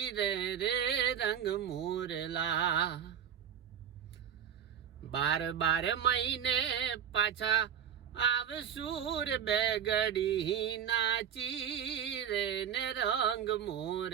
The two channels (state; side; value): quieter; left; 8.6 dB